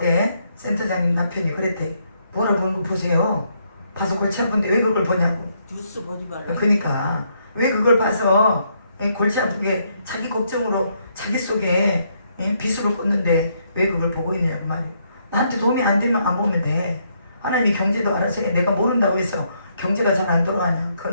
센터장님 남편이 그랬대. 뭐라 보는 거 보세요. 봐서 골치 아픈데 왜 그걸 보냐고. 뉴스 보지 말라. 그러니까 왜 그걸 봐서 골치 아프게 자기 걱정으로 자기 속에 비수를 꽂는데 왜 그걸 보고 있느냐고 말이야. 나한테 도움이 안 되면 안 보면 돼. 하나님이 경제도 알아서 해. 내가 모른다고 해서 경제가 잘 안 돌아가냐.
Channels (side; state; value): both; inverted; correlation -0.74